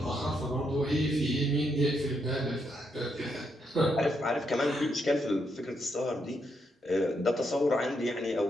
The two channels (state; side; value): normal; both; correlation 0.79